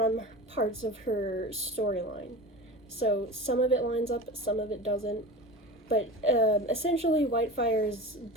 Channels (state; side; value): normal; both; correlation 0.31